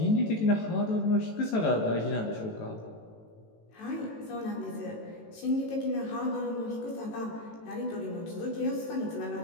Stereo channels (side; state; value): right; late; 18 ms